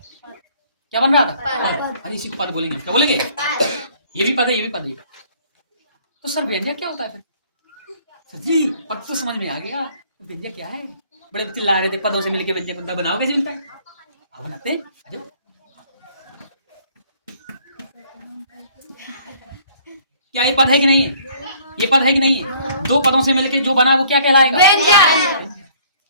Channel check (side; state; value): both; inverted; correlation -0.58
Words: क्या बन रहा था। अरे इसी को पद बोलेंगे, क्या बोलेंगे? ये भी पद है, ये भी पद है। तो सर व्यंजक क्या होता है फिर? सर जी पद तो समझ में आ गया, तो व्यंजक क्या है? बड़े चिल्ला रहे थे पदों से मिलके व्यंजक बनता, बनाओ कैसे मिलता है? बनाते हैं। क्या ये पद है कि नहीं है? ये पद है कि नहीं है? 2 पदों से मिलके जो बना वो क्या कहलाएगा? व्यंजक।